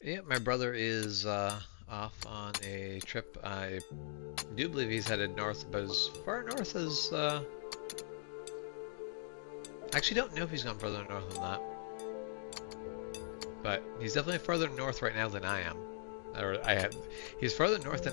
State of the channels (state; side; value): silent; right; digital silence